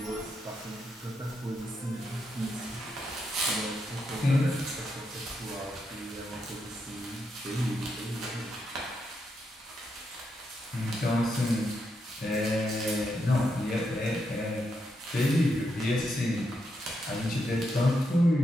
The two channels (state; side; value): normal; both; correlation 0.82